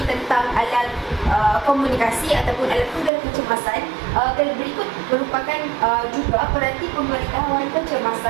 tentang alat komunikasi ataupun alat penggera kecemasan, berikut merupakan juga peranti pemberitahuan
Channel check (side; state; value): left; drops out; at 3.1 s